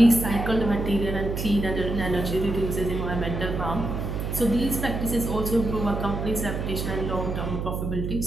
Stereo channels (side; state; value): right; noise; hum, 3 dB below the sound